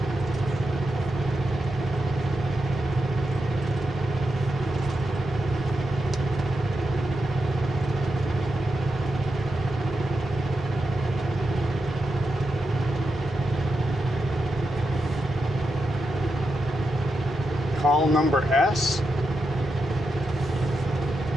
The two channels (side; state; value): both; normal; correlation 0.86